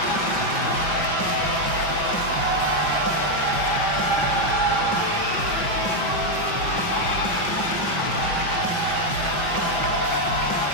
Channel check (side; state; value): right; late; 5.5 ms